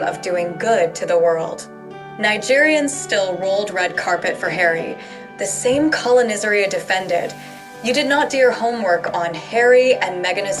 doing good to the world. Nigerians still rolled red carpet for Harry, the same colonizer you defended. You did not do your homework on Harry and Meghan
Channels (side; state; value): both; identical; correlation 1.00